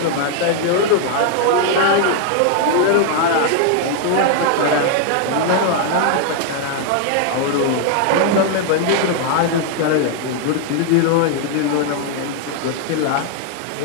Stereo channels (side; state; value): both; different; correlation 0.00